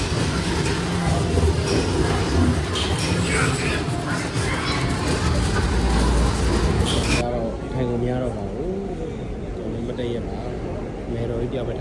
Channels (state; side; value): identical; both; correlation 1.00